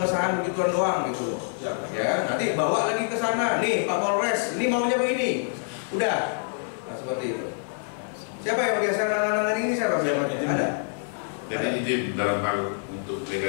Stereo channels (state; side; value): silent; right; 61 dB below the other